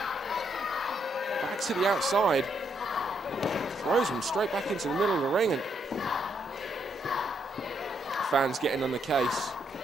back to the outside, throws him straight back into the middle of the ring, and fans getting on the case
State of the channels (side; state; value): both; normal; correlation 0.75